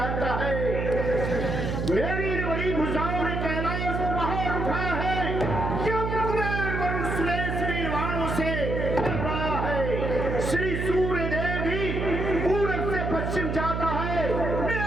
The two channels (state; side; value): noise; right; hum, 1 dB below the sound